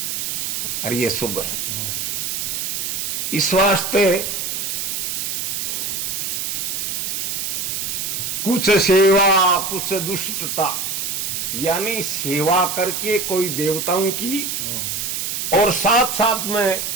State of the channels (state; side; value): noise; right; hiss, 2 dB below the sound